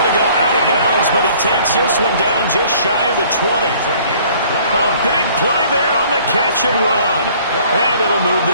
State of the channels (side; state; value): both; inverted; correlation -0.55